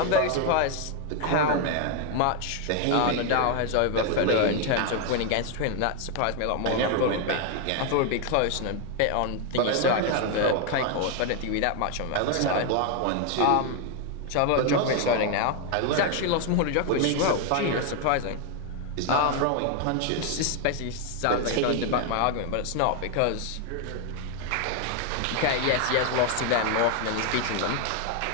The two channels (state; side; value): different; both; correlation 0.01